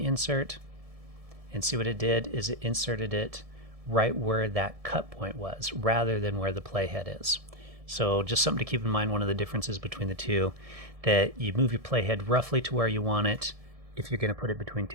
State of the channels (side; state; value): left; late; 1.7 ms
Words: and see what it did is it inserted it right where that cut point was rather than where the playhead is. So just something to keep in mind, one of the differences between the two, that you move your playhead roughly to where you want it if you're going to put it between